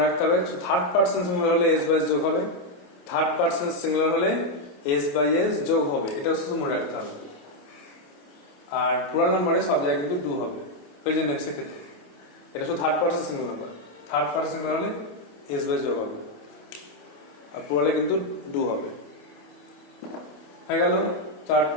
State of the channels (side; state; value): right; late; 28 ms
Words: রাখতে হবে, থার্ড পার্সন সিঙ্গুলার হলে এস বাই এস যোগ হবে, থার্ড পার্সন সিঙ্গুলার হলে এস বাই এস যোগ হবে, এটা শুধু মনে রাখতে হবে। আর প্লুরাল নাম্বারে সব জায়গায় কিন্তু ডু হবে প্রেজেন্ট টেন্সের ক্ষেত্রে। এটা শুধু third person singular number, third person singular হলে এস বাই যোগ হবে, আর প্লুরালে কিন্তু ডু হবে। হয়ে গেল চার্ট